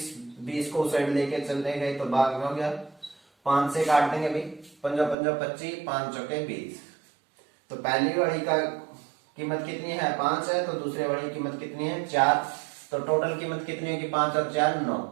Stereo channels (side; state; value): left; drops out; at 5.2 s